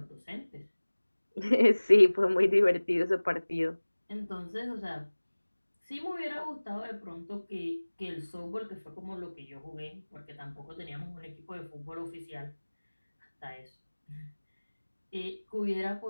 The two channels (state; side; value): inverted; both; correlation -1.00